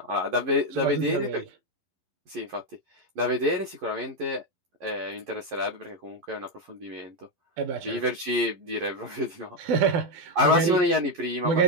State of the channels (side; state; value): left; late; 12 ms